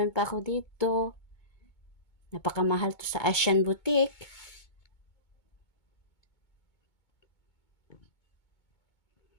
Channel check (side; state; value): right; late; 2.2 ms